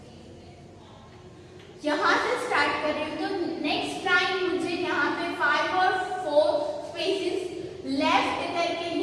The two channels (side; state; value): both; identical; correlation 1.00